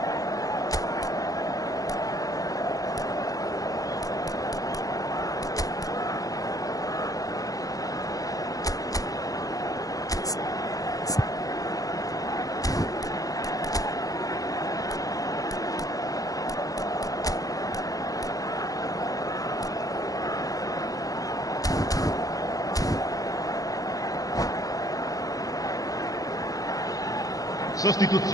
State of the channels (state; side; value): late; right; 0.17 ms